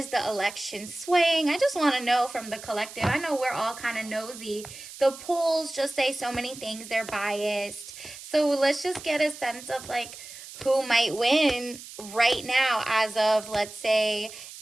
the election swaying? I just want to know from the collective. I know we're all kind of nosy. The polls just say so many things, they're biased. So let's just get a sense of who might win right now as of, let's say,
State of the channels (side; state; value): right; noise; hiss, 14 dB below the sound